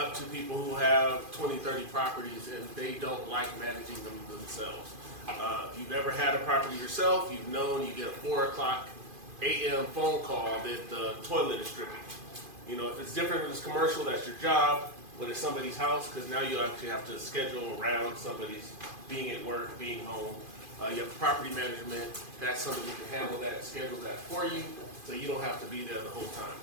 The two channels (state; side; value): late; left; 2.5 ms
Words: to people who have 20, 30 properties and they don't like managing them themselves. If you've ever had a property yourself, you've known you get a 4 a.m. phone call that the toilet is dripping. You know, if it's different if it's commercial, that's your job. When it's somebody's house, because now you actually have to schedule around somebody's being at work, being home. You have property management, that's somebody who can handle that, schedule that for you, so you don't have to be there the whole time.